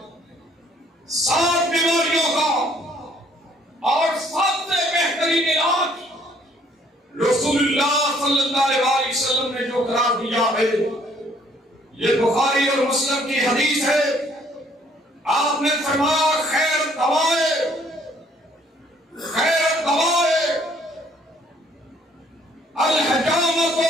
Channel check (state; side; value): normal; both; correlation 0.63